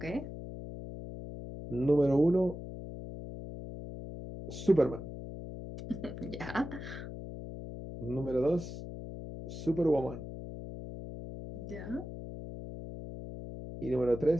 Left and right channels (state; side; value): noise; left; hum, 10 dB below the sound